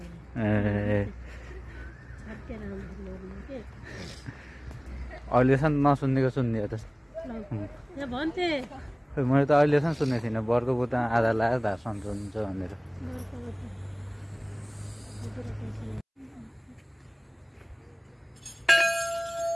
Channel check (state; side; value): identical; both; correlation 1.00